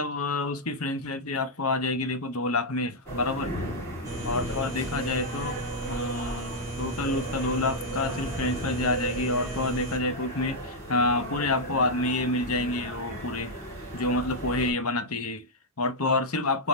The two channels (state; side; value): normal; both; correlation -0.03